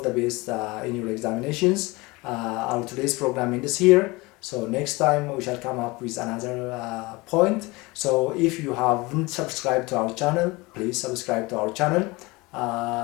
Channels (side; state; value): right; quieter; 23.5 dB